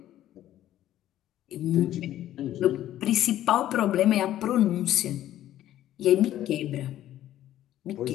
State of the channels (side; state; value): right; quieter; 12.8 dB